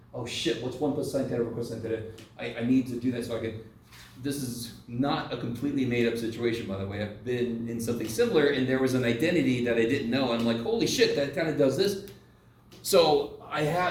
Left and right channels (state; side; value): identical; both; correlation 1.00